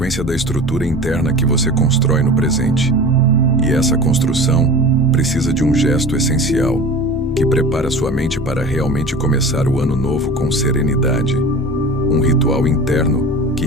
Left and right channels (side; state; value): both; normal; correlation 0.36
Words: da estrutura interna que você constrói no presente. E essa construção precisa de um gesto essencial, que prepara sua mente para realmente começar o ano novo com serenidade. Um ritual interno que